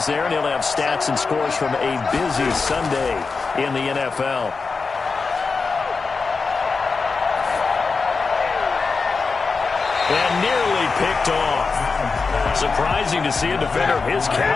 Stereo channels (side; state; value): right; quieter; 4.5 dB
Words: there, and he'll have stats and scores from a busy Sunday in the NFL. And nearly picked off. Surprising to see a defender of his